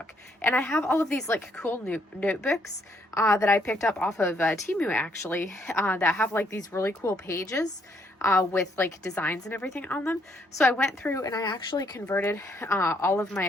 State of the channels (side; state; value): both; normal; correlation 0.71